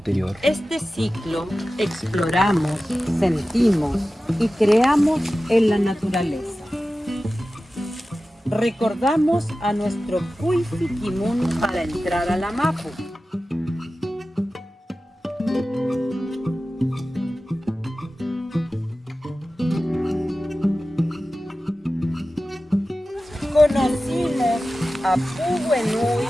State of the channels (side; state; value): both; normal; correlation 0.95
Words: Este ciclo exploramos, sentimos y creamos en la naturaleza. Recordamos a nuestro Cuifiquimun para entrar a la Mapu. Conocimos a Puguenui,